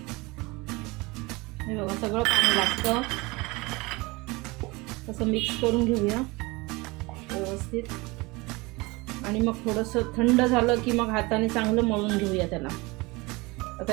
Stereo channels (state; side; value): quieter; left; 24.1 dB